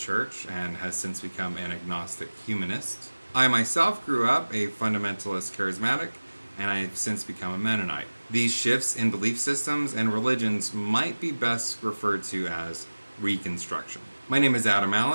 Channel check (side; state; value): both; inverted; correlation -1.00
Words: church and has since become an agnostic humanist. I myself grew up a fundamentalist charismatic, and I've since become a Mennonite. These shifts in belief systems and religions might be best referred to as Reconstruction. My name is Adam